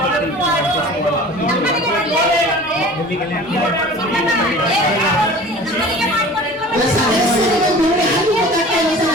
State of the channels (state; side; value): normal; both; correlation 0.42